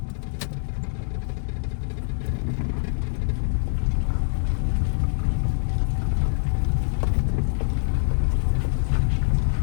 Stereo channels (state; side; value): silent; right; digital silence